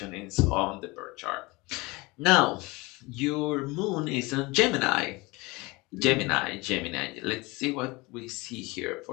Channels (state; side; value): quieter; right; 24.0 dB